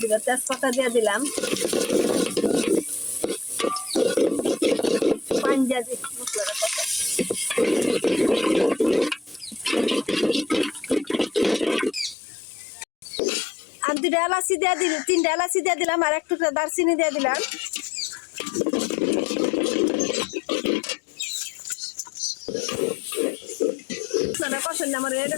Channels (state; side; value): drops out; right; at 12.2 s